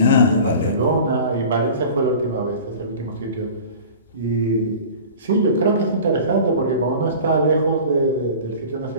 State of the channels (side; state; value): both; inverted; correlation -0.40